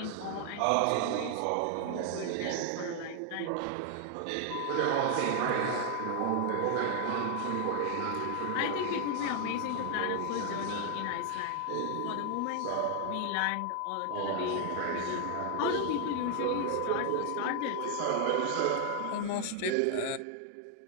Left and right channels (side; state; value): both; different; correlation 0.00